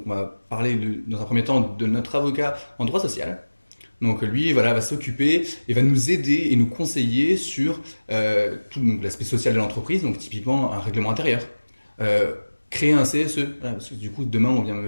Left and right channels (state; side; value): inverted; both; correlation -1.00